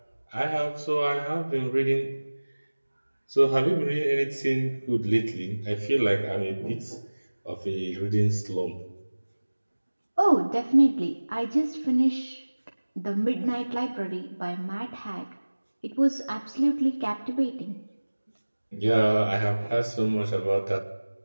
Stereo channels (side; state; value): both; inverted; correlation -1.00